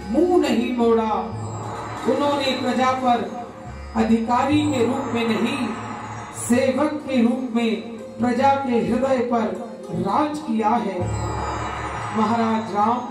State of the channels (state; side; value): identical; both; correlation 1.00